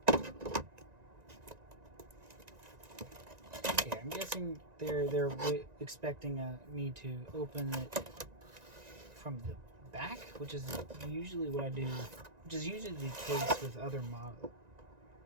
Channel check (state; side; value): late; left; 1.9 ms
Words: Okay, I'm guessing they're expecting me to open it from the back, which is usually what I do, which is usually the case with other